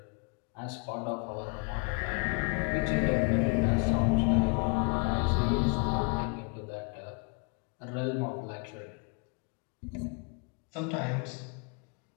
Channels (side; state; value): right; quieter; 34.9 dB